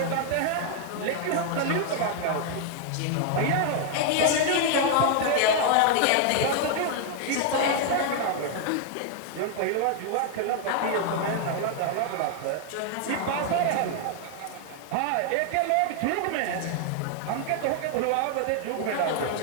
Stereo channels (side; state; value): both; different; correlation 0.00